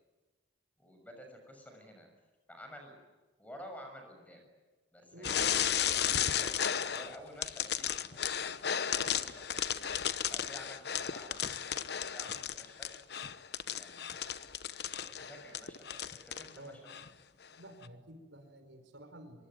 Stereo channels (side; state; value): right; quieter; 8.3 dB